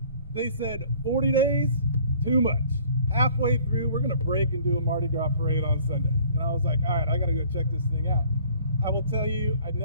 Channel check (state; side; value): inverted; both; correlation -0.54